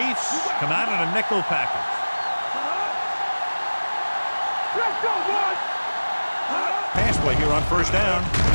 come out in a nickel package. Let's go, boys. Pass play here on first down.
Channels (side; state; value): both; inverted; correlation -1.00